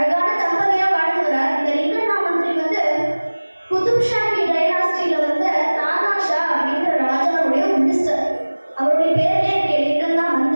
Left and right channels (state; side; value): inverted; both; correlation -1.00